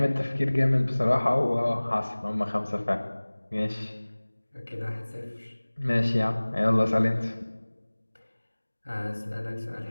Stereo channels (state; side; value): inverted; both; correlation -1.00